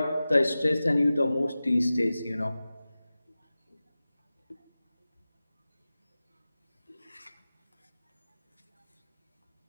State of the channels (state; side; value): inverted; both; correlation -0.96